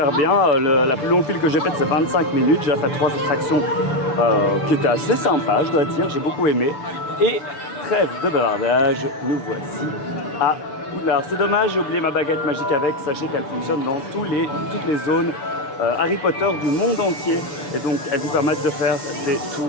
bien. La plus longue file que j'ai faite c'est 25 minutes. J'ai fait 3 attractions qui étaient assez sympas, je dois dire. J'ai beaucoup aimé. Et trêve de bavardage, nous voici à Poudlard. C'est dommage, j'ai oublié ma baguette magique avec. Sachez qu'elle fonctionne dans toutes les zones Harry Potter du monde entier. Et donc elles vous permettent de faire des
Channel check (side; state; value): right; late; 7.0 ms